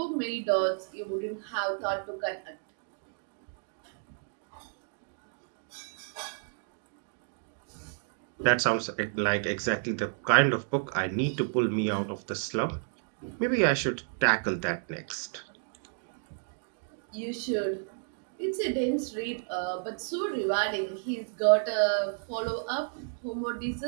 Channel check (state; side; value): silent; left; digital silence